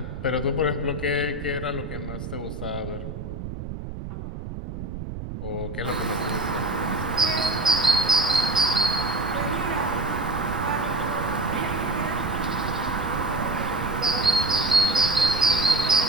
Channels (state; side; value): noise; right; rumble, 8 dB below the sound